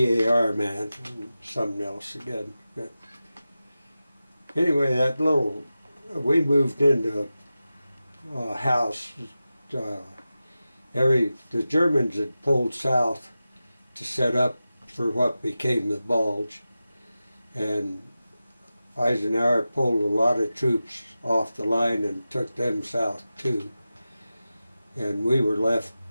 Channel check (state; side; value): inverted; both; correlation -0.94